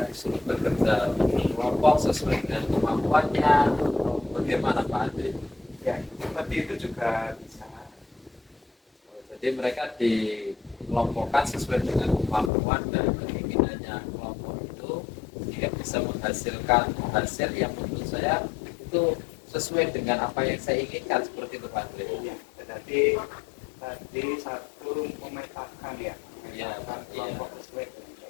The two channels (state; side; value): drops out; right; at 12.5 s